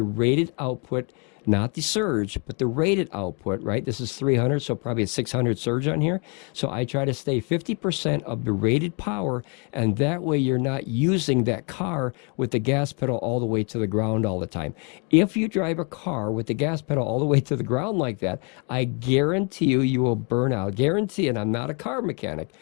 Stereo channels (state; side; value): quieter; right; 35.2 dB